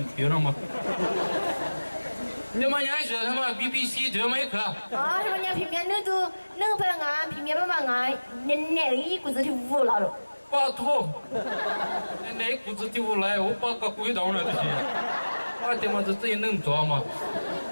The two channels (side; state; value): both; inverted; correlation -1.00